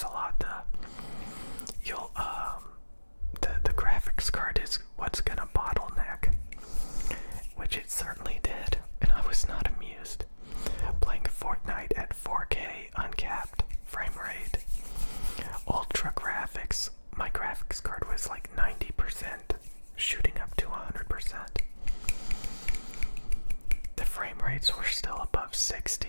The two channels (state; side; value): inverted; both; correlation -1.00